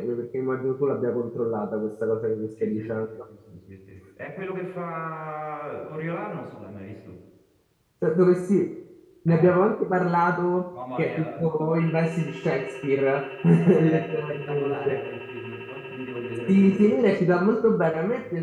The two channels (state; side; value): identical; both; correlation 1.00